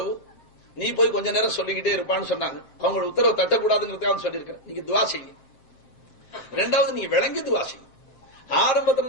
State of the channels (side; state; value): right; late; 7.6 ms